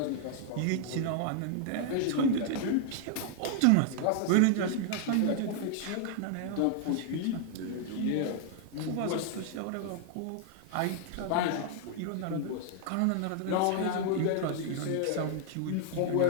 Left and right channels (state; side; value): different; both; correlation -0.01